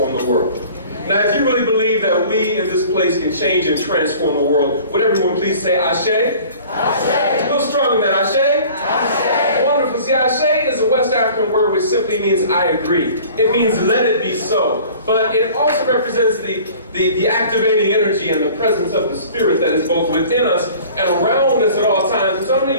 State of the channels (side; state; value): both; inverted; correlation -0.47